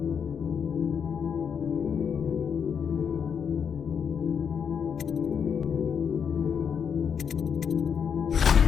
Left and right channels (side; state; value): right; quieter; 7.1 dB